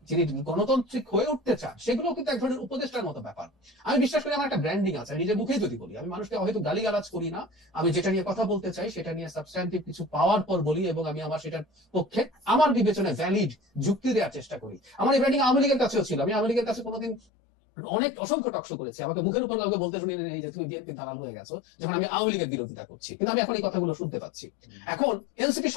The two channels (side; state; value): right; drops out; at 17.2 s